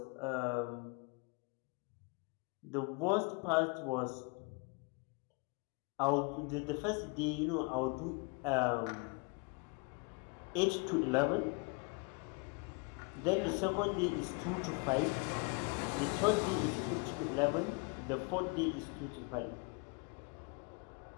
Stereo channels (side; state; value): right; quieter; 31.5 dB